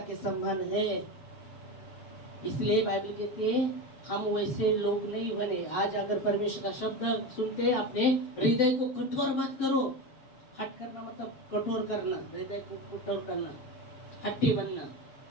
सम्मान है। इसलिए बाइबल कहती है हम वैसे लोग नहीं बने। आज अगर परमेश्वर का शब्द सुनते अपने हृदय को कठोर मत करो। हट करना मतलब कठोर करना, हृदय को कठोर करना, हट्टी बनना।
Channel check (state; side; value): late; right; 6.8 ms